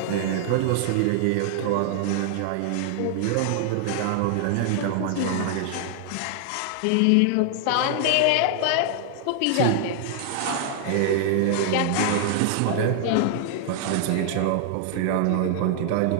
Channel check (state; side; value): different; both; correlation 0.00